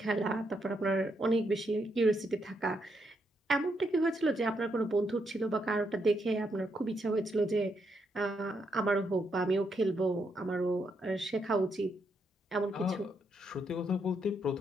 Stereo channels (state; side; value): normal; both; correlation 0.78